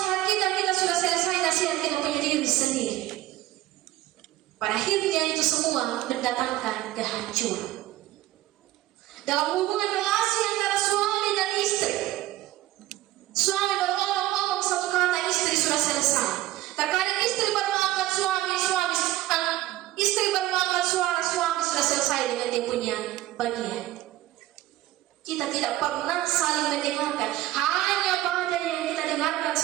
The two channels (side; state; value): left; quieter; 15.6 dB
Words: kita sudah selesai nasihat kita punya diri sendiri. Pada akhirnya itu semua mendatangkan kehancuran. Dalam hubungan relasi antara suami dan istri, suami baru ngomong satu kata, istri sudah selesai. Terkadang istri baru angkat istri baru angkat suara, suami sudah selesai dengan dia punya bagian. Kita tidak pernah saling mendengarkan, hanya badai yang kita dengarkan